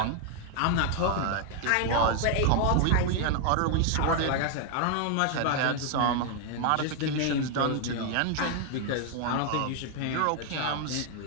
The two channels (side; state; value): both; different; correlation 0.00